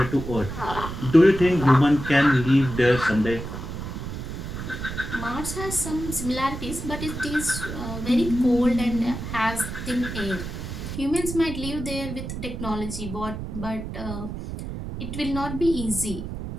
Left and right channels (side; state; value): right; noise; rumble, 7 dB below the sound